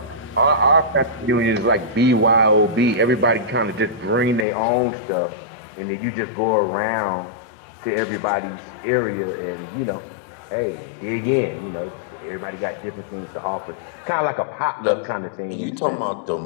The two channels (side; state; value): right; drops out; at 4.5 s